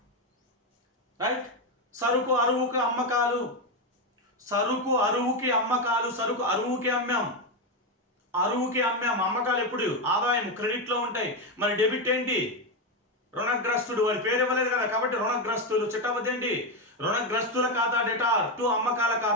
రైట్? సరుకు అరువుకి అమ్మకాలు. సరుకు అరువుకి అమ్మాం. అమ్మకాలు ఎప్పుడు? ఆదాయం క్రెడిట్ లో ఉంటాయి. మరి డెబిట్ ఏంటి? రుణగ్రస్తుడు. వాడి పేరు ఇవ్వలేదు కదా, కాబట్టి రుణగ్రస్తులు. చిట్టబద్దు ఏంటి? రుణగ్రస్తుల ఖాతా డెటార్ టు అమ్మకాల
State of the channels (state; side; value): normal; both; correlation 0.09